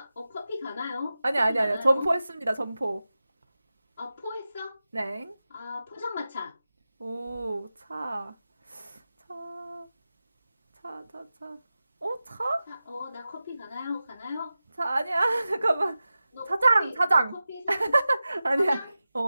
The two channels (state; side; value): inverted; both; correlation -0.94